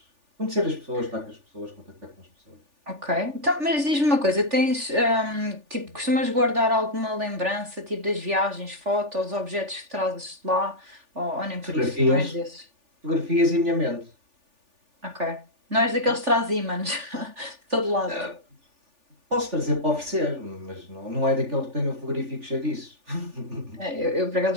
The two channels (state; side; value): late; left; 3.4 ms